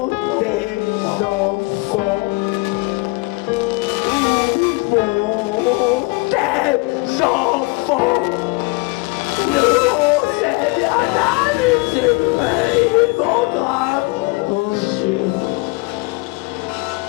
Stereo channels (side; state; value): right; quieter; 26.5 dB